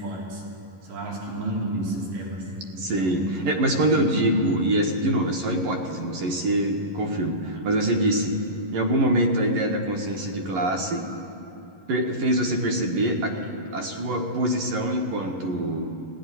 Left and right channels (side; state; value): left; late; 11 ms